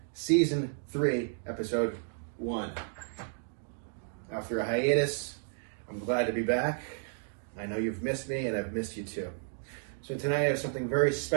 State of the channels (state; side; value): silent; left; digital silence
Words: season 3, episode 1. After a hiatus, I'm glad to be back. I know you've missed me and I've missed you too. So tonight I have something very